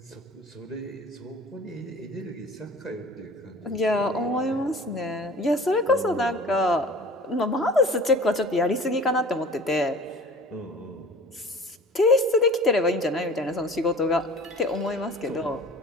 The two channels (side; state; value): both; normal; correlation 0.43